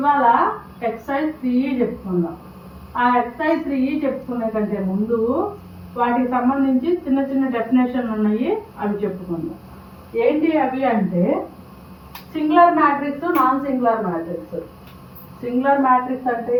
exercise 3 చెప్పుకుందాం. ఆ ఎక్సర్సైజ్ 3 చెప్పుకునే కంటే ముందు వాటికి సంబంధించి చిన్న చిన్న డెఫినేషన్లు ఉన్నాయి, అవి చెప్పుకుందాం. ఏంటి అవి అంటే singular matrix, non singular matrix. Singular matrix అంటే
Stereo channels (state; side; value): identical; both; correlation 1.00